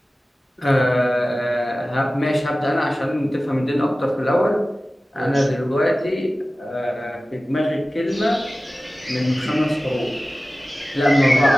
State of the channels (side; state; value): both; normal; correlation 0.96